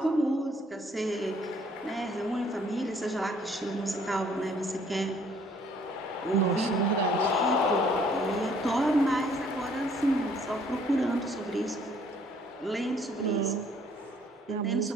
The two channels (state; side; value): normal; both; correlation 0.61